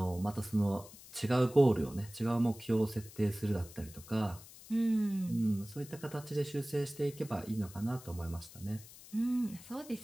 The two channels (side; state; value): left; noise; hiss, 18 dB below the sound